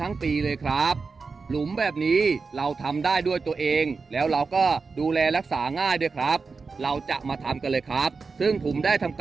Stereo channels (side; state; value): left; quieter; 4.6 dB